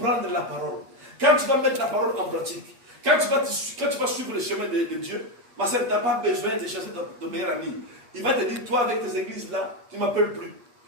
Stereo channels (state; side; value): late; left; 8.4 ms